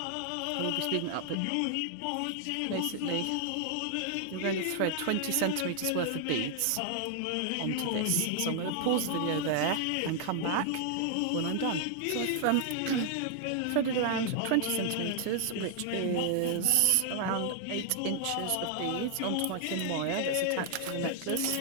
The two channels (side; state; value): both; different; correlation 0.00